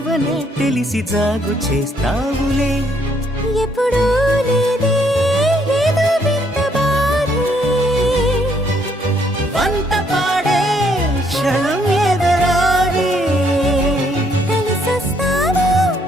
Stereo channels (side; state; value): both; normal; correlation 0.69